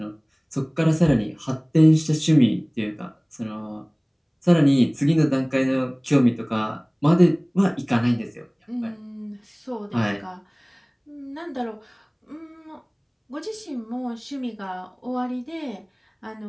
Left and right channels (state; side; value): identical; both; correlation 1.00